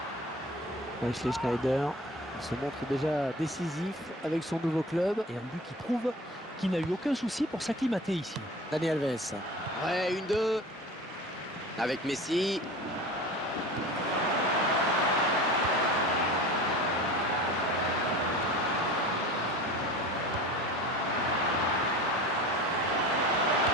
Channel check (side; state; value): both; normal; correlation 0.37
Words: Wesley Schneider se montre déjà décisif avec son nouveau club. Et un but qui prouve qu'il n'a eu aucun souci pour s'acclimater ici. Dani Alves. Ouais, 1-2. Avec Messi.